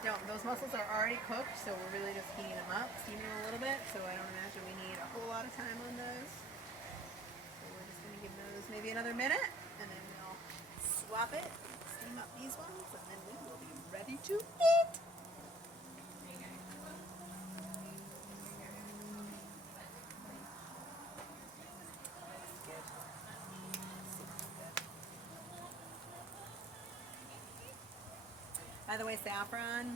Those mussels are already cooked, so we're really just heating them up, steaming them a little bit, so I don't imagine we need a whole lot of time on those. So we're just going to give those maybe another minute, and then we'll swap it, steam up these ones, and then we will be ready to eat. By the way,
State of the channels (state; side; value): normal; both; correlation 0.54